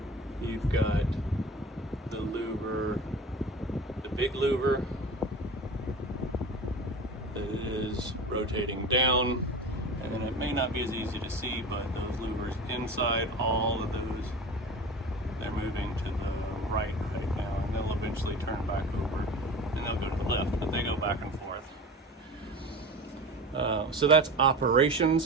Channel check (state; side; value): normal; both; correlation 0.34